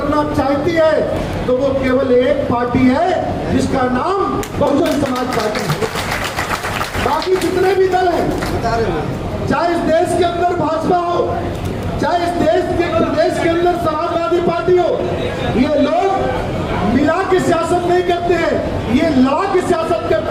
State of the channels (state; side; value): identical; both; correlation 1.00